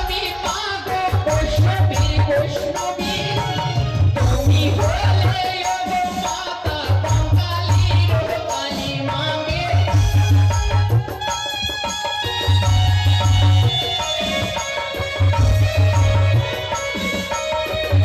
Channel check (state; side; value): identical; both; correlation 1.00